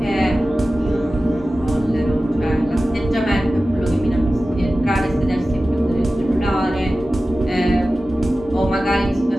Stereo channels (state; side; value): normal; both; correlation 0.95